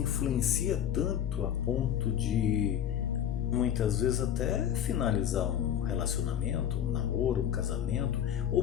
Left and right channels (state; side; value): quieter; right; 10.0 dB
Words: tanto a ponto de muitas vezes até finalizar um relacionamento, um namoro, um casamento,